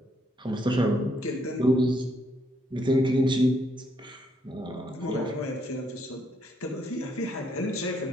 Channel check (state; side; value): normal; both; correlation 0.73